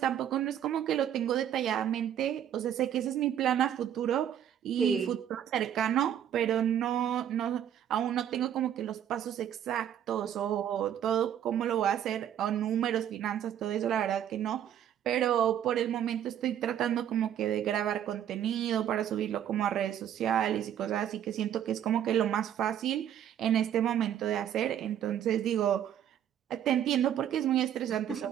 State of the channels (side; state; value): left; quieter; 10.1 dB